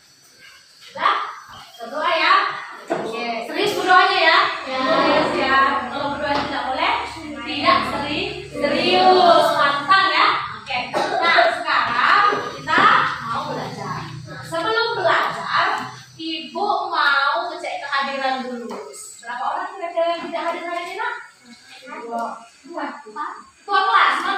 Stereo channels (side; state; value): both; identical; correlation 1.00